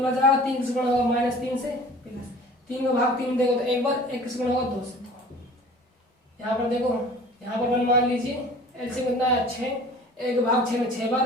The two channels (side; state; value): both; normal; correlation 0.45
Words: बच जाएगा, 3 से गुणा होगा -3 से प्लस, 3 का भाग 3 देंगे तो एक बार, 1 से गुणा होगा 2 से। यहाँ पर देखो, यहाँ पर 1 मान लीजिए, एलसीएम कितना है, 6, 1 भाग 6 में 6